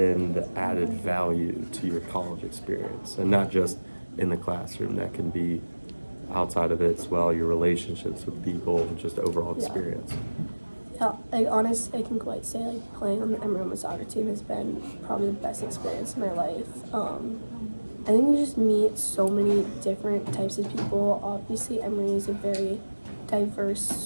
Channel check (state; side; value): inverted; both; correlation -1.00